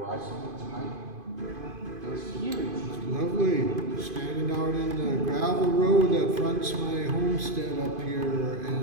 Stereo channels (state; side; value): late; left; 2.5 ms